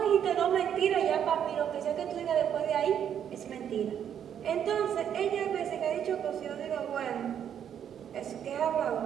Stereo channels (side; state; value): left; quieter; 9.1 dB